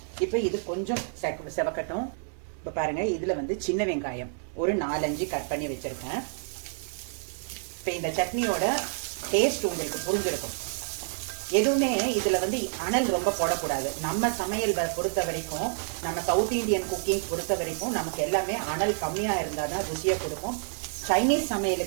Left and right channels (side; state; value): left; silent; digital silence